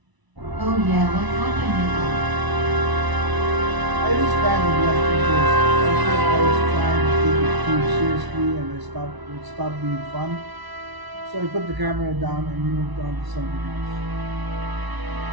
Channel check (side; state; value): left; late; 1.0 ms